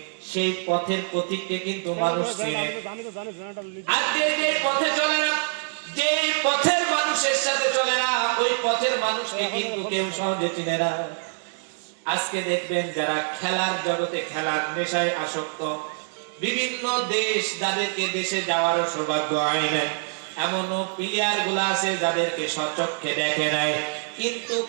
সেই পথের প্রতীককে কিন্তু মানুষ চিনে। আর যে পথে চলে না, যে পথের মানুষের সাথে চলে না, ওই পথের মানুষকে কিন্তু কেউ সহজে চিনে না। আজকে দেখবেন যারা খেলার জগতে, খেলার নেশায় আসক্ত, বিভিন্ন দেশ যাদেরকে দেশে যাওয়ার সৌভাগ্য হয় নাই, এমনও প্লেয়ার গুলা আছে যাদেরকে সচক্ষে দেখে নাই, কিন্তু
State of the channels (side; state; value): left; silent; digital silence